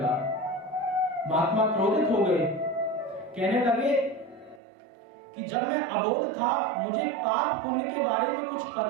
महात्मा क्रोधित हो गए, कहने लगे कि जब मैं अबोध था, मुझे पाप पुण्य के बारे में कुछ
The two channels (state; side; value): drops out; left; at 4.6 s